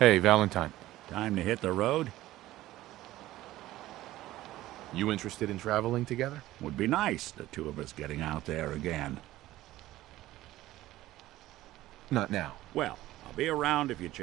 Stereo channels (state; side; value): quieter; left; 15.8 dB